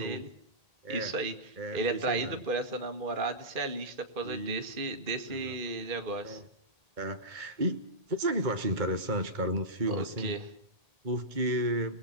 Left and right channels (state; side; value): late; left; 1.8 ms